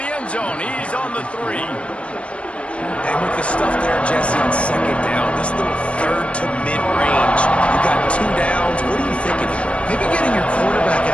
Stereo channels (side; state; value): right; late; 0.061 ms